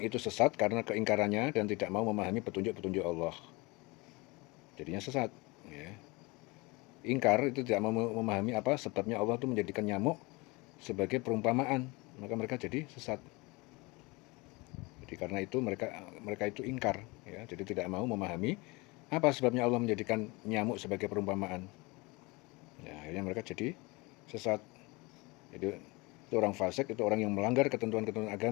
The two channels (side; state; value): right; quieter; 25.2 dB